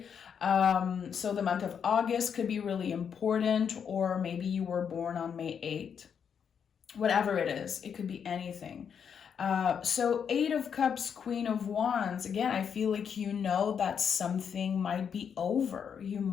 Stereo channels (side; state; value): right; quieter; 7.4 dB